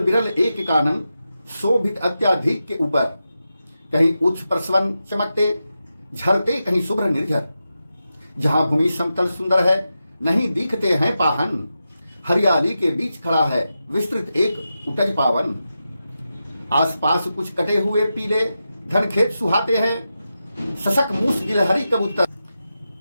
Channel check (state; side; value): inverted; both; correlation -0.90